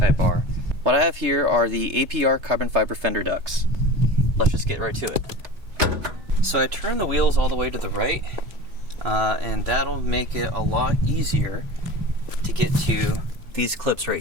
R. What I have here are the APR carbon fiber fender ducts. Let's just get right to it. So I turn the wheels all the way to the right, and that'll make it a lot easier to get to these clips right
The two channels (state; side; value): late; left; 3.3 ms